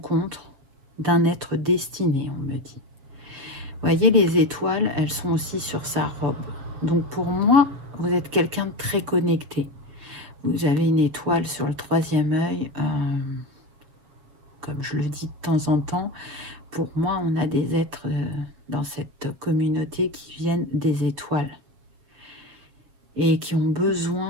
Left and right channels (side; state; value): left; late; 7.1 ms